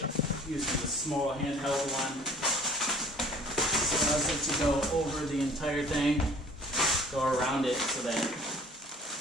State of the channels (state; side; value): normal; both; correlation 0.51